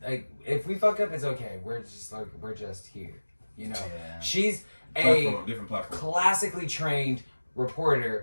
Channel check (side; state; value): both; inverted; correlation -1.00